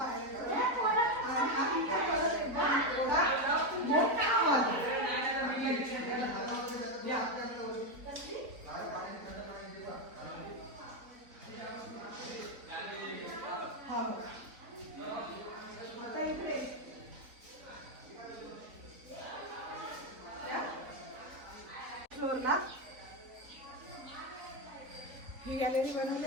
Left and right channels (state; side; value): late; left; 3.9 ms